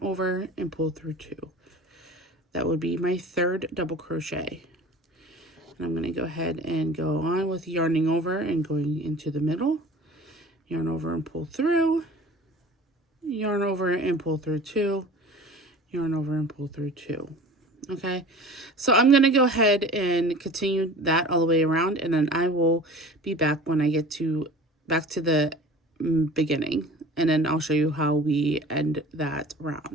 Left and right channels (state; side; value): normal; both; correlation 0.41